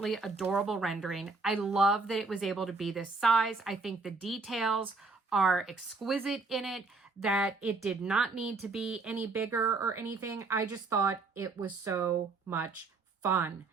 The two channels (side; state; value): left; quieter; 4.0 dB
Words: adorable rendering. I love that it was able to be this size. I think the details are exquisite in it, that it did not need to be any bigger or anything. I just thought it was so much fun.